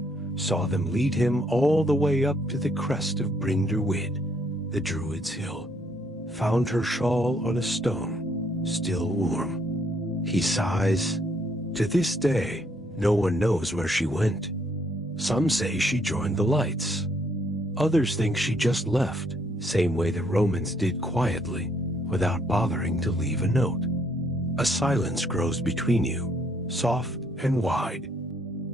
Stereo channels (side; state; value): both; normal; correlation 0.69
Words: saw them lead him all the way up to the crest of Brynderwyd, the Druid's hill, found her shawl on a stone, still warm. He sighs. To this day, no one knows where she went. Some say she joined the lights. Others think she just left, same way the Romans did quietly, without bothering to leave a note. A silence grows between you, soft and wide.